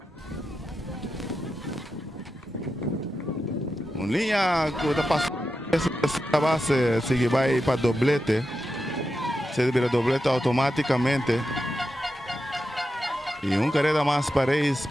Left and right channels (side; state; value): both; normal; correlation 0.89